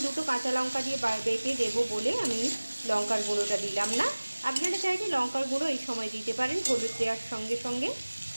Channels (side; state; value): both; inverted; correlation -1.00